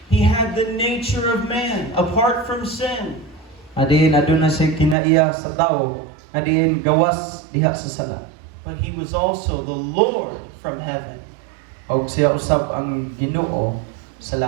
He had the nature of man apart from sin. Adiin aduna siya kinaiya sa tao nga diin gawas diha sa sala. But He was also the Lord from heaven. Og siya usab ang Ginoo sa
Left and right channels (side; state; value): left; drops out; at 5.0 s